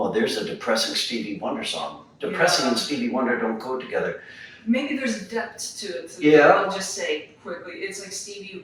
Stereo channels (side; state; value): both; identical; correlation 1.00